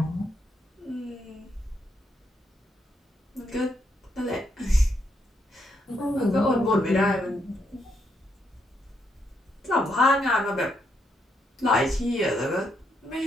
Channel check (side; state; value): both; normal; correlation 0.78